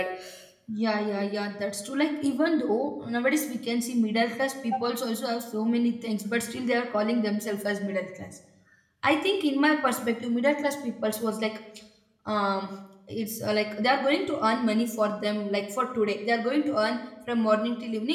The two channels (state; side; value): identical; both; correlation 1.00